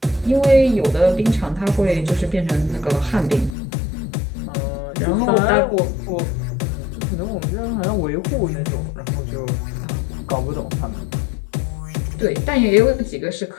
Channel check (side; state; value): right; drops out; at 3.6 s